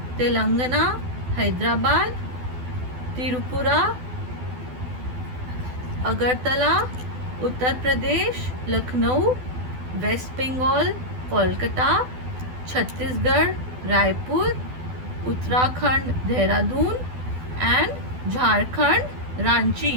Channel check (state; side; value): late; left; 12 ms